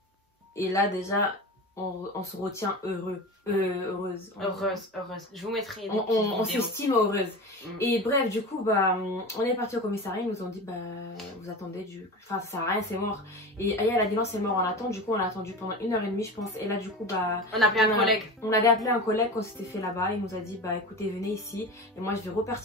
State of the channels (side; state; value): both; normal; correlation 0.30